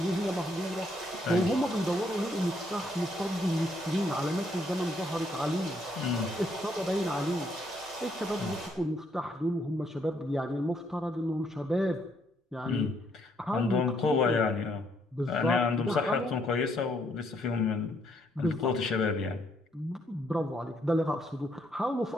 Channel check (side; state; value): both; normal; correlation 0.71